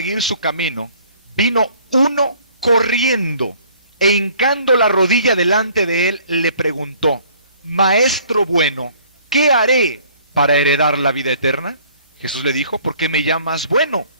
su camino, vino uno corriendo e hincando la rodilla delante de él, le preguntó, Maestro bueno, ¿qué haré para heredar la vida eterna? Jesús le dijo, ¿por qué me llamas bueno?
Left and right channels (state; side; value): inverted; both; correlation -0.56